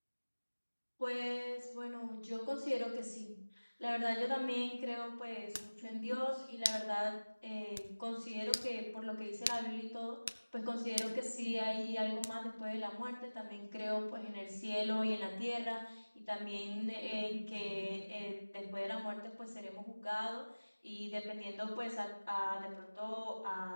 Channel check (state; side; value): inverted; both; correlation -1.00